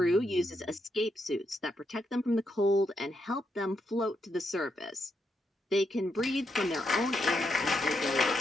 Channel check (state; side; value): normal; both; correlation 0.80